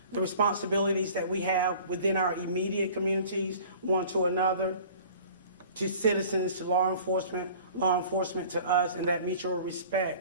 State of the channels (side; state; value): both; inverted; correlation -0.47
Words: the responsibilities that we have within our immediate communities, one to another, to citizens, to law enforcement to us, and that mutual